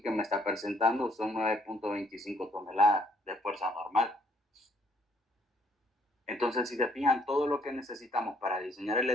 que me está presentando son 9.25 toneladas de fuerza normal. Entonces, si se fijan, todo lo que necesitamos para diseñar el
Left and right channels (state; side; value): normal; both; correlation 0.66